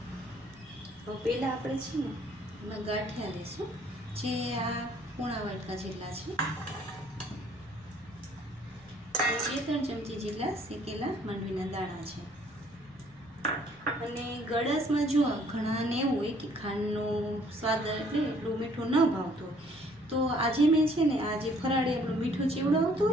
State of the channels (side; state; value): left; noise; rumble, 25 dB below the sound